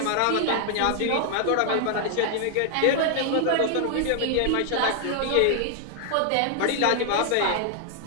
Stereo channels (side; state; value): both; different; correlation 0.00